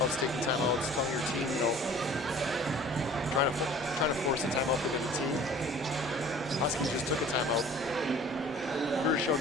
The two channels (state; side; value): normal; both; correlation 0.48